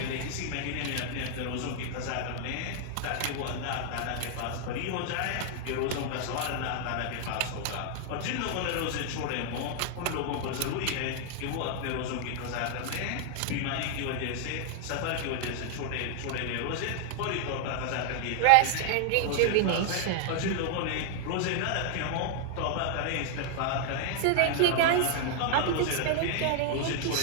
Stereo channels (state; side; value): different; both; correlation 0.00